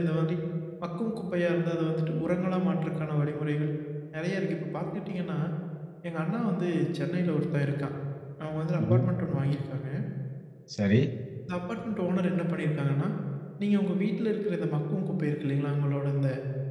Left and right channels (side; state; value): both; identical; correlation 1.00